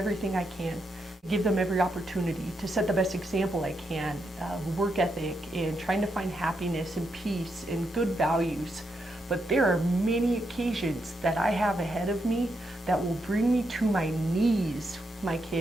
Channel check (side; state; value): both; normal; correlation 0.82